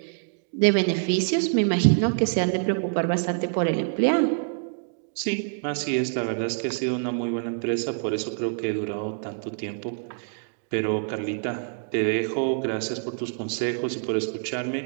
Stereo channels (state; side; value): silent; left; digital silence